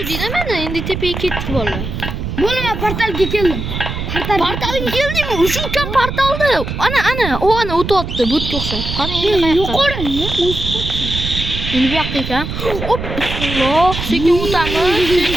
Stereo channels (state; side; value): noise; right; rumble, 5 dB below the sound